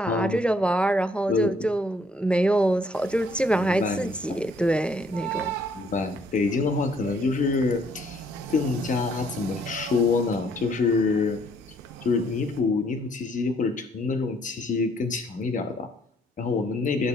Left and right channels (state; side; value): normal; both; correlation 0.65